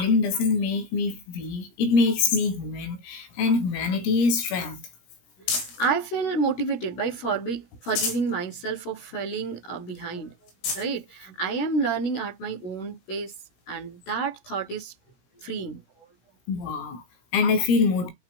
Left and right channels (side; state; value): right; late; 17 ms